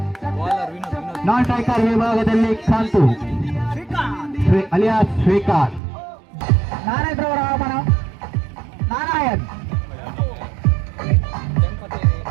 ನಾನ್ ಸ್ಟ್ರೈಕರ್ ವಿಭಾಗದಲ್ಲಿ ಕಾಂತು ಅಲಿಯಾಸ್ ಶ್ರೀಕಾಂತ್ ನಾರಾಯಣರವರ ಆಗಮನ ನಾರಾಯಣ್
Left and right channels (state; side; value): drops out; left; at 5.8 s